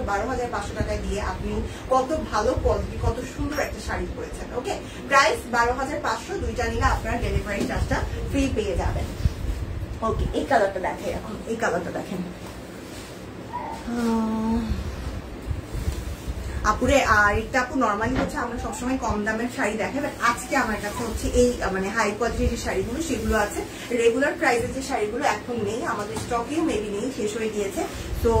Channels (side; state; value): both; identical; correlation 1.00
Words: 12,500 টাকা দিয়ে আপনি কত ভালো কোয়ালিটি, কত সুন্দর একটা শাড়ি পরেছেন। ওকে, প্রাইস 12,500, দুইটা নিলে আপনারা ডেলিভারি চার্জটা ফ্রি পেয়ে যাবেন। ওকে, এই কালারটা দেখেন, এখন এই কালারটা দেখেন আপুরে। আর এটা আপু নর্মালি হচ্ছে আমরা সবসময় কম দামের শাড়ি দেখাই, বাট আজকে আমার কাছে হচ্ছে এই মানে হাই কোয়ালিটির যে শাড়িগুলো সেগুলো আছে। রেগুলার প্রাইসের যে শাড়িগুলো এখন নেই, আমাদের স্টকেও মেবি নেই, শেষ হয়ে গিয়েছে। তো